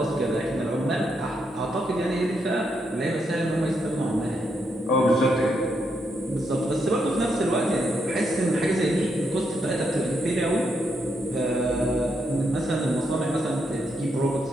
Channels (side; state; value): both; normal; correlation 0.80